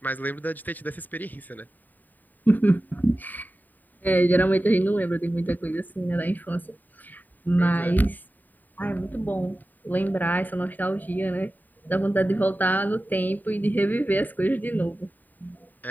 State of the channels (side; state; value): right; late; 0.087 ms